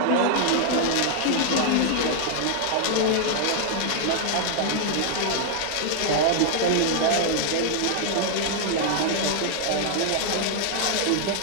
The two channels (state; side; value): different; both; correlation 0.00